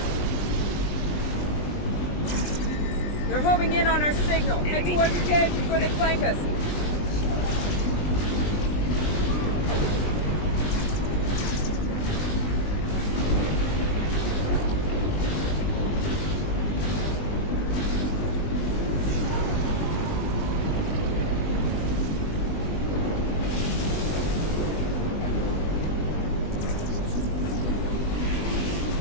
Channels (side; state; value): right; late; 20 ms